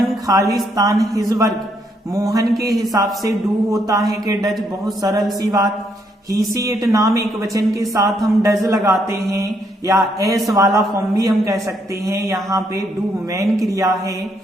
खालिस्तान हिज वर्क। मोहन के हिसाब से डू होता है कि डज, बहुत सरल सी बात। ही सी इट नाम एक वचन के साथ हम डज लगाते हैं, या एस वाला फॉर्म भी हम कह सकते हैं। यहाँ पे डू मेन क्रिया है,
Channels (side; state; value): both; normal; correlation 0.74